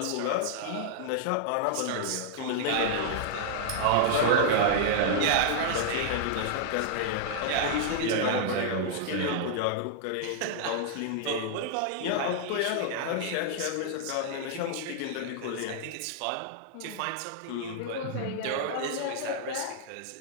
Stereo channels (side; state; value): both; different; correlation -0.01